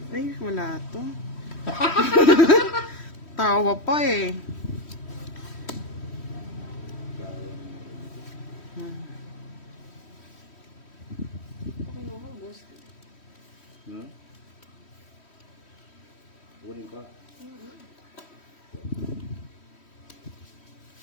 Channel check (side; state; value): right; late; 3.1 ms